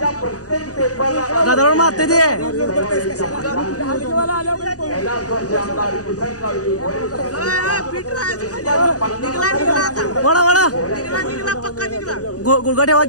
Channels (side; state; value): right; late; 0.67 ms